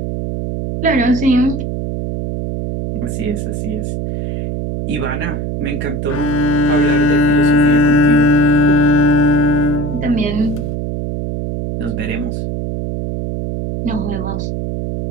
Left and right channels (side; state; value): right; noise; hum, 4 dB below the sound